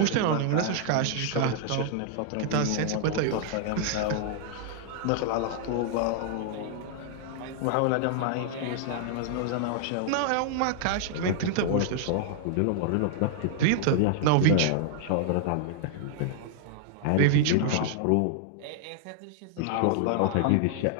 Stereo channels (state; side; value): different; both; correlation -0.01